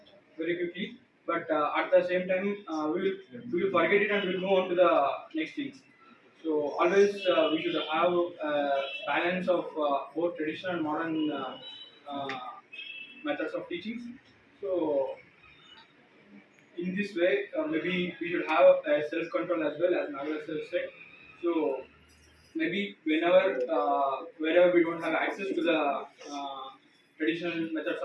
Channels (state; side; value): identical; both; correlation 1.00